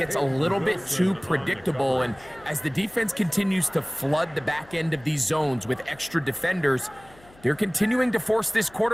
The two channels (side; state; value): left; noise; hum, 25 dB below the sound